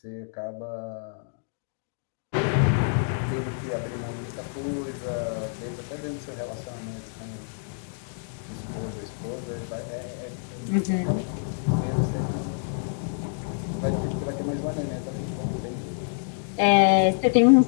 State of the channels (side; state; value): right; silent; digital silence